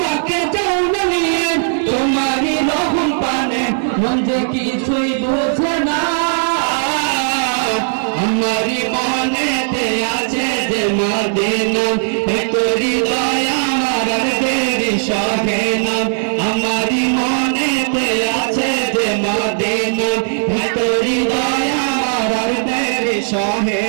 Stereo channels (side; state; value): left; silent; digital silence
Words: যাও না নিয়ে তোমারি রহম পানে, মন যে কিছুই বোঝে না। আমারি মনেতে আছে যে মদিনা, তোরি দয়া আমার আর দেরি সহে না। আমারি মনেতে আছে যে মদিনা, তোরি দয়া আমার আর দেরি সহে